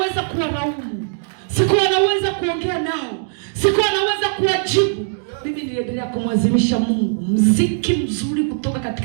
kuwalaumu, sikuwa naweza kuongea nao, sikuwa naweza kuwajibu. Mimi niliendelea kumwazimisha Mungu. Mziki mzuri kutoka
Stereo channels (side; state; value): left; silent; digital silence